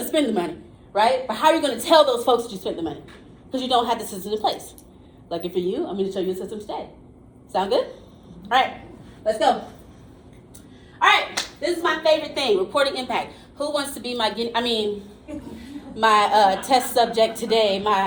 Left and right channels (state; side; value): identical; both; correlation 1.00